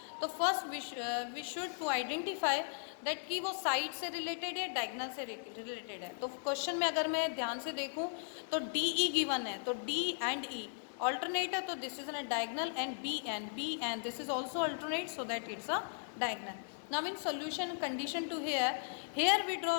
तो first we should to identify that कि वो साइड से रिलेटेड है डायगोनल से रिलेटेड है. तो क्वेश्चन में अगर मैं ध्यान से देखूं तो डी ई गिवन है, तो डी एंड ई alternate है, तो this is a diagonal, and B and this is also alternate, so that it's a diagonal. Now in solution condition to here we draw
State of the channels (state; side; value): silent; right; digital silence